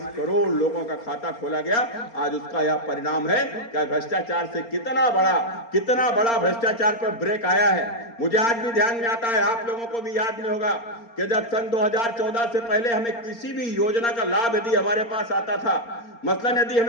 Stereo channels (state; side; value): late; right; 4.3 ms